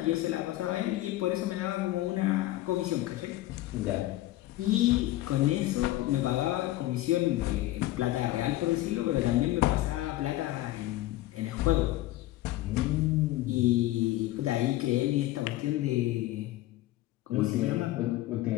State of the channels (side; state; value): right; quieter; 16.3 dB